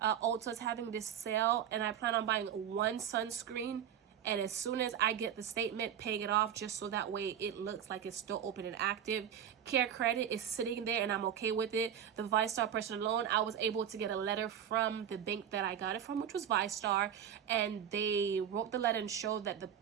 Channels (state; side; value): quieter; left; 9.3 dB